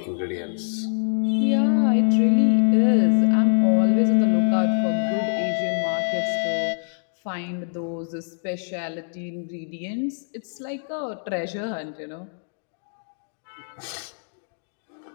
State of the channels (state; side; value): silent; right; digital silence